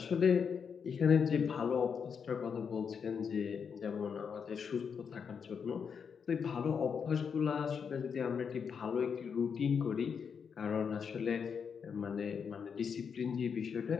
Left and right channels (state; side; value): quieter; right; 6.6 dB